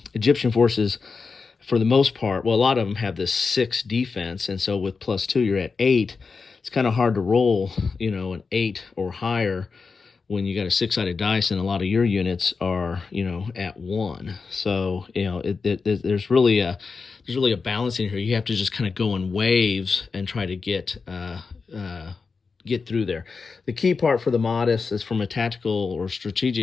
Egyptian forces, for the most part, well, a lot of them have this 6 defense, and so with +2, you're at 8. It's kind of hard to roll, an 8 or higher when you got a 6-sided dice, and a lot of your units are, at 1. So, there's really a balance in here. You have to just kind of go in waves and try to get through there. The key part for the Mahdists is, from a tactical or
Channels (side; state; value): right; quieter; 4.8 dB